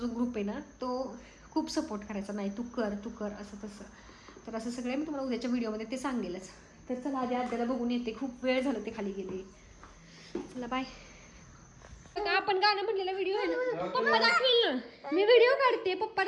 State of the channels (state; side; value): identical; both; correlation 1.00